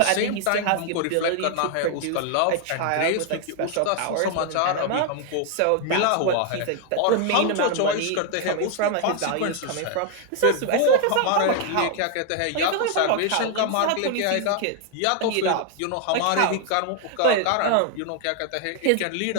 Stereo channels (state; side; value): different; both; correlation 0.00